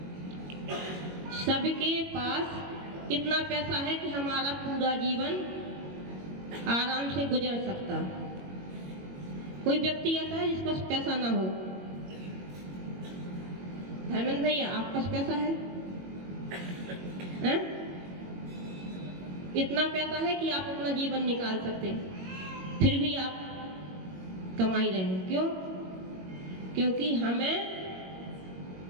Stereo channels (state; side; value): late; left; 22 ms